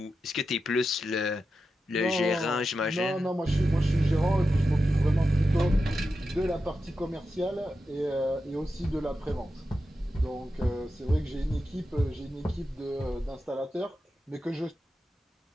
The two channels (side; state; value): both; normal; correlation 0.90